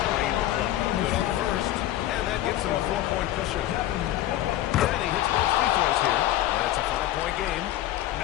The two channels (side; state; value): right; quieter; 13.9 dB